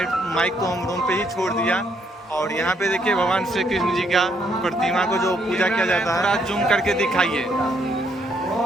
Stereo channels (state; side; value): normal; both; correlation 0.72